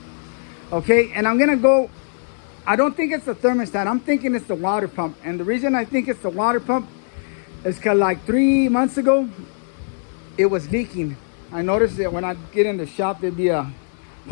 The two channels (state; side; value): silent; right; digital silence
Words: Okay, and I'm going to go, I don't think it's the thermostat. I'm thinking it's the water pump. And the reason I think it's the water pump is because like 3 months ago, it was leaking. I noticed that when I get in the shop, there'd be a